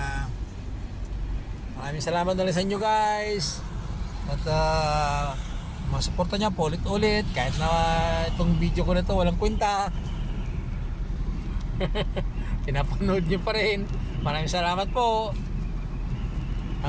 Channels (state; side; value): identical; both; correlation 1.00